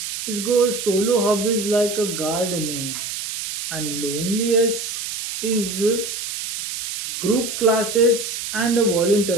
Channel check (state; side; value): noise; right; hiss, 6 dB below the sound